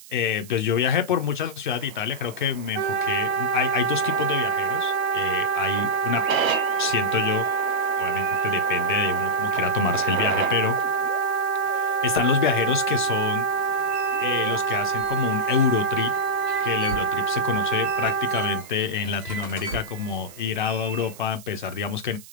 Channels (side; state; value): right; noise; hiss, 19 dB below the sound